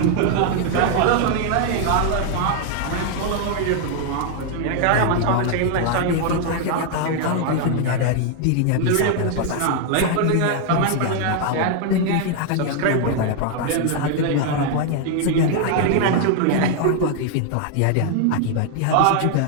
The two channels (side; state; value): both; different; correlation 0.00